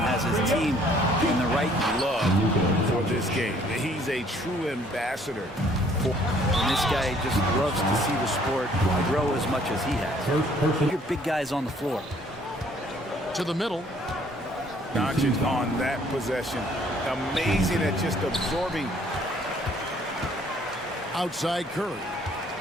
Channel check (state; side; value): normal; both; correlation 0.61